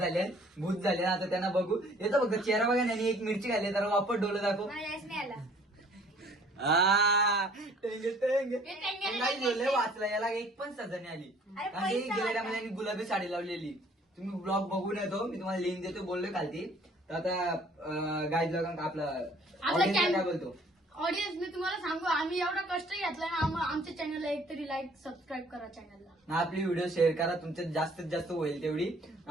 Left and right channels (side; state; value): both; normal; correlation 0.56